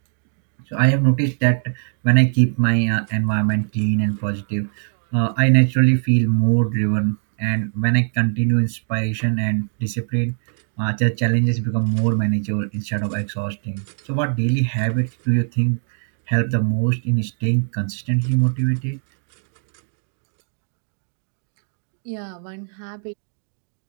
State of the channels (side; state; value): left; silent; digital silence